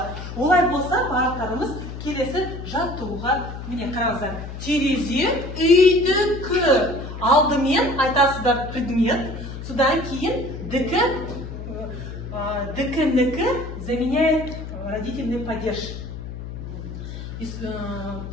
Олай болса, бағыттарымыз келесі жаттығуға. Міне қараңыздар. Терезе үйдікі. Алдымен айтасыздар предмет. Содан кейін дікі заменяет родительный падеж.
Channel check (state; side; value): noise; left; hum, 9 dB below the sound